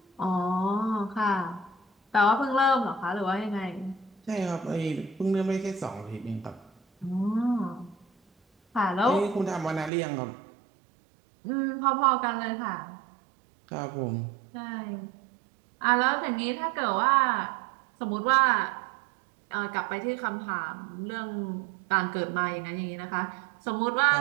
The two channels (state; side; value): drops out; left; at 9.9 s